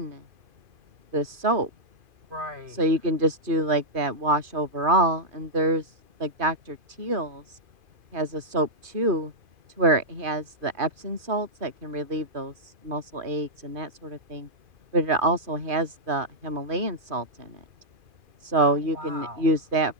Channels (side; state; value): left; late; 2.5 ms